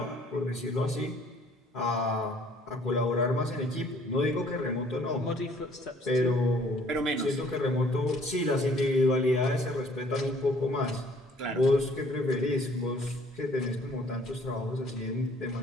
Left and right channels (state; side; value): normal; both; correlation 0.58